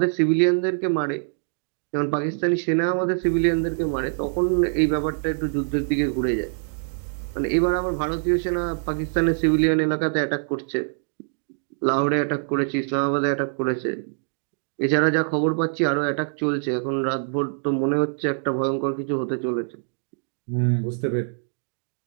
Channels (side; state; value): left; silent; digital silence